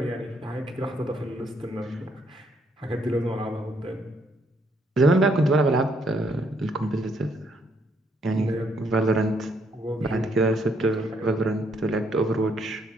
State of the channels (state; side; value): normal; both; correlation 0.71